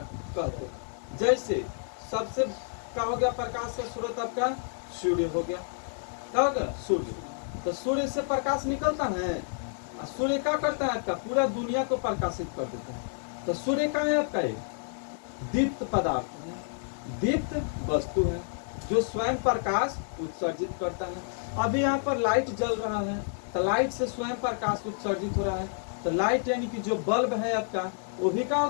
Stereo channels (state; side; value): silent; right; digital silence